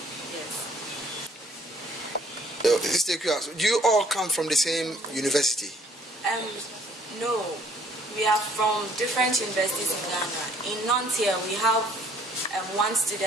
Yes. Do you all come from the same university? No. We are from different universities in Ghana. In Nantes here, we have one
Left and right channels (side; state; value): both; normal; correlation 0.60